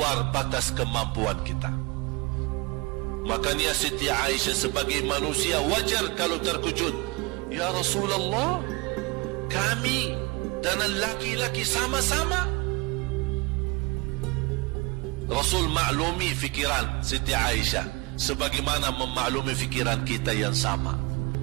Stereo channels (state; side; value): quieter; left; 26.1 dB